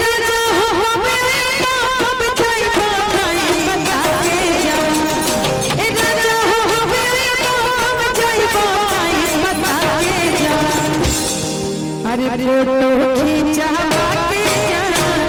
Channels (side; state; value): both; identical; correlation 1.00